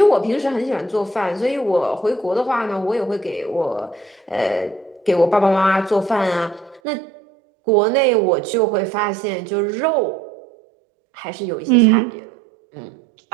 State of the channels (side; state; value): left; drops out; at 6.8 s